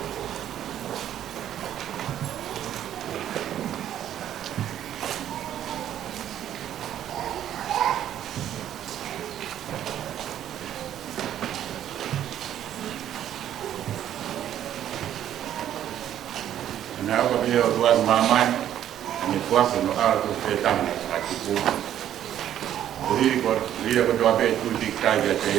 na ko bio tuan mamai ni kuasa no ala tu petang ati ku ri ko doa be tu dik kai ga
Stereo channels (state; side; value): quieter; left; 11.0 dB